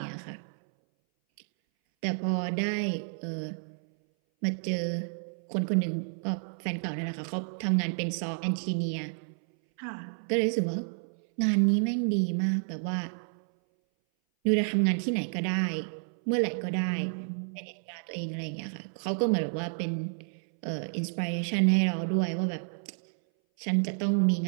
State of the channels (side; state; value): left; silent; 58 dB below the other